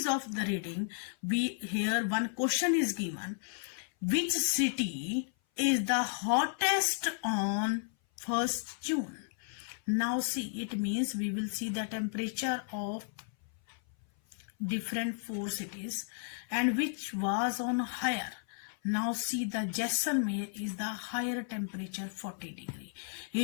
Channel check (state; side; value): silent; right; 55 dB below the other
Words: of the reading, here one question is given. Which city is the hottest on 1st June? Now see, it means we will see the temperature of different 4 cities and which was on higher. Now see, the Jaisalmer is the higher temperature 40 degree.